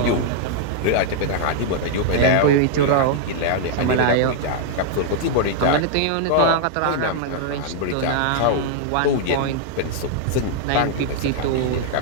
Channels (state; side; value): different; both; correlation -0.01